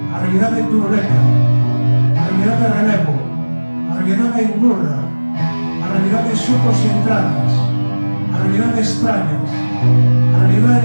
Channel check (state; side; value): inverted; both; correlation -1.00